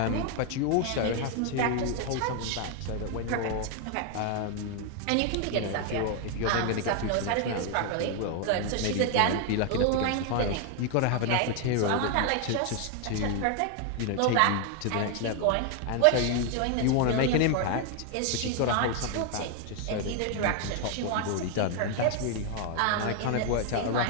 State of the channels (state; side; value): different; both; correlation 0.00